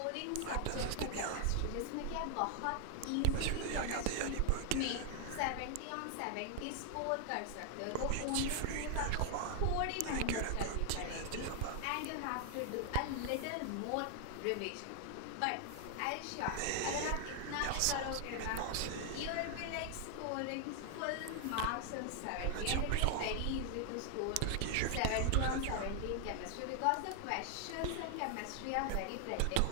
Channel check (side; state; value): both; different; correlation 0.00